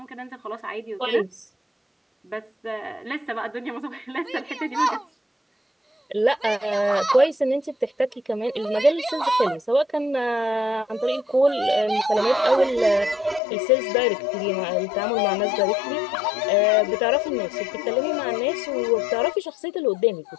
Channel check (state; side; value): drops out; right; at 13.4 s